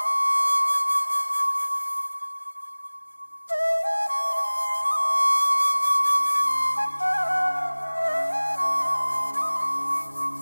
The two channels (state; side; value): inverted; both; correlation -1.00